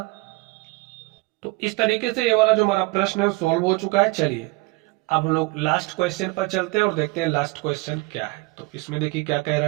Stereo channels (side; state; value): left; quieter; 23.4 dB